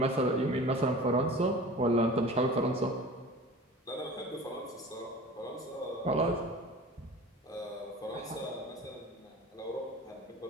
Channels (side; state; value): both; normal; correlation 0.39